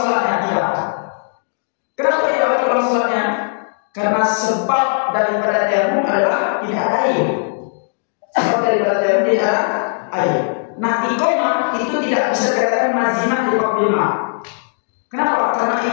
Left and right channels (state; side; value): silent; right; 67 dB below the other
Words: tidak. Kenapa tidak wajib orang sholatnya? Karena sebab daripada temum adalah tidak ada air. Sebab daripada temum tidak ada air. Nah, iqamah itu tidak bisa dikatakan mazimah di bab 5. Kenapa? Karena